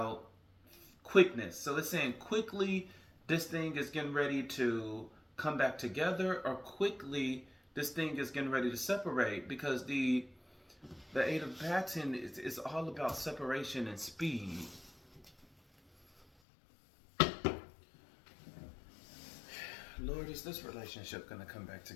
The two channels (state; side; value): drops out; right; at 16.2 s